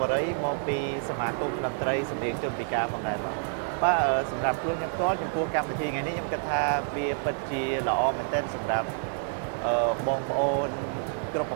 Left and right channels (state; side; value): silent; left; 59 dB below the other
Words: វរីមកពីសមាគមតន្ត្រីសម្លេងជនពិការផងដែរបាទសម្រាប់ខ្លួនខ្ញុំផ្ទាល់ចំពោះកម្មវិធីថ្ងៃនេះខ្ញុំគិតថាវាពិតជាល្អមែនទែនសម្រាប់បងប្អូនគ្រប់ប